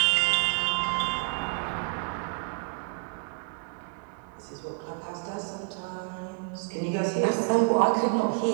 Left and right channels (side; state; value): left; quieter; 35.2 dB